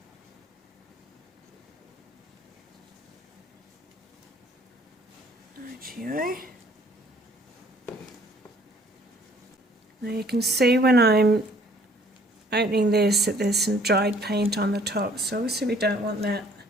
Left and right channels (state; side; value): normal; both; correlation 0.58